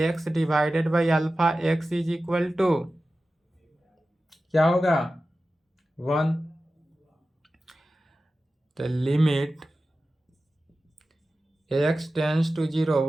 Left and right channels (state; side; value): normal; both; correlation 0.94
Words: divided by alpha x is equal to क्या होगा 1। तो लिमिट x टेंस टू 0